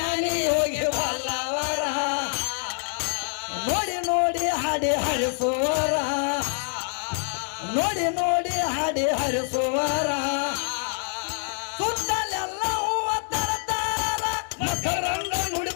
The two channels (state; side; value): silent; right; digital silence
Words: ಹೋಗಿ ಬಲ್ಲವರ ನೋಡಿ ನೋಡಿ ಹಾಡಿ ಹರಿಸೋರ ನೋಡಿ ನೋಡಿ ಹಾಡಿ ಹರಿಸುವರ ಸುತ್ತಲೆಲ್ಲ ಹೂವ ತರತಾರ ಮಕರಂಗ